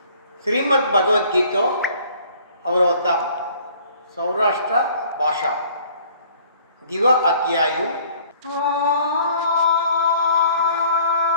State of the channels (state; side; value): inverted; both; correlation -0.56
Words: ಶ್ರೀಮದ್ ಭಗವದ್ಗೀತೆ ಅವರವತಾಂ ಸೌರಾಷ್ಟ್ರ ಭಾಷಾ ದಿವ ಅಧ್ಯಾಯು